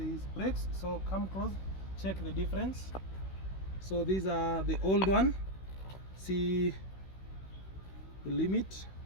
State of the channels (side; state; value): right; late; 16 ms